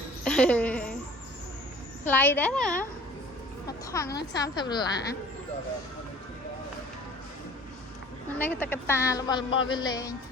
ថ្លៃដែរណាមកថងហ្នឹង$30នេះក៏តកតារបស់វាលេង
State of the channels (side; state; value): both; normal; correlation 0.48